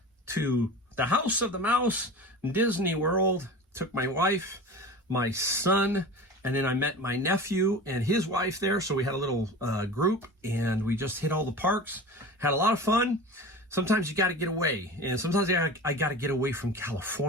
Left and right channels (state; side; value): normal; both; correlation 0.34